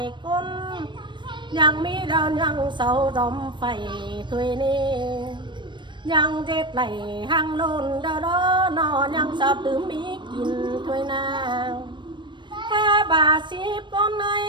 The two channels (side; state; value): left; late; 0.22 ms